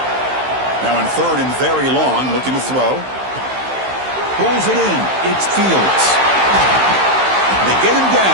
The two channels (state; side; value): late; left; 15 ms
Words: Now in 3rd and very long, looking to throw. Pulls it in. It's Fields. They get him